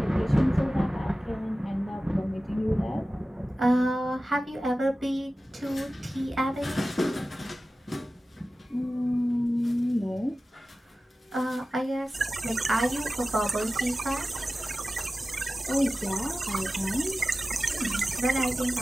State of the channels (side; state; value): both; normal; correlation 0.95